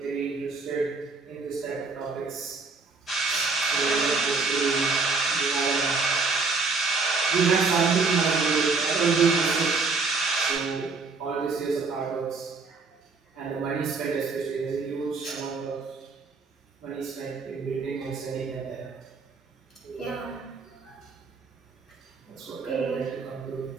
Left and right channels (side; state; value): left; quieter; 4.3 dB